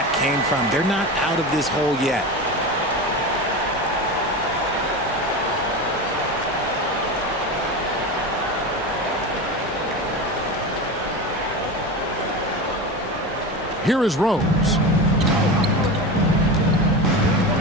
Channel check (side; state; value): both; normal; correlation 0.25